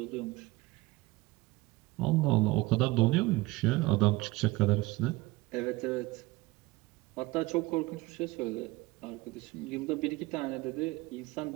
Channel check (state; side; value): quieter; left; 20.4 dB